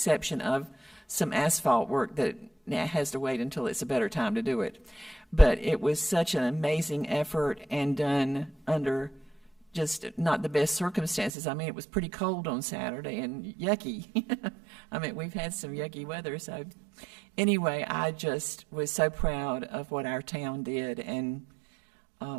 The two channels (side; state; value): left; drops out; at 11.3 s